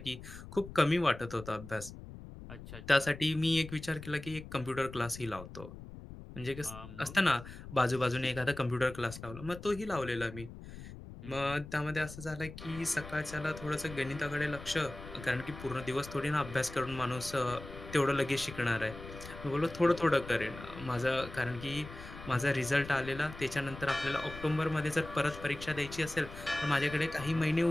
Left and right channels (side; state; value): left; noise; rumble, 13 dB below the sound